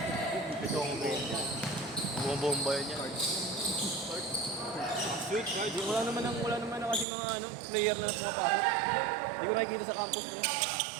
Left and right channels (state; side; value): drops out; left; at 7.1 s